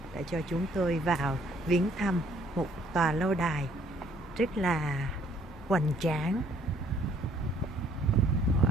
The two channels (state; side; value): normal; both; correlation 0.62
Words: đã cho chúng tôi vào viếng thăm một tòa lâu đài rất là hoành tráng.